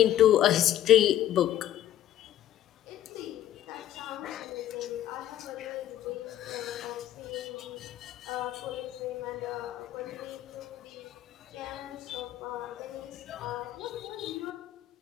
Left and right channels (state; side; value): quieter; right; 12.1 dB